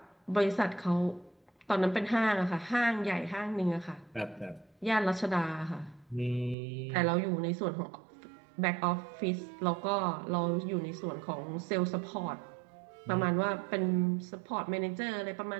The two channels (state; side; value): drops out; left; at 6.6 s